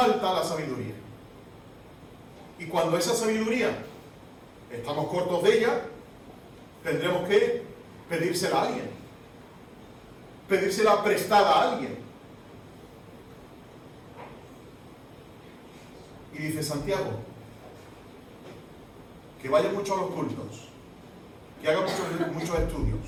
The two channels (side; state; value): both; identical; correlation 1.00